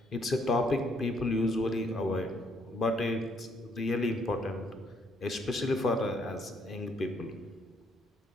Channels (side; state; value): both; normal; correlation 0.69